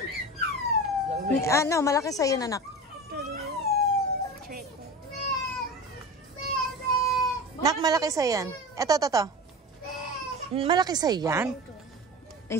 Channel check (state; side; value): normal; both; correlation 0.31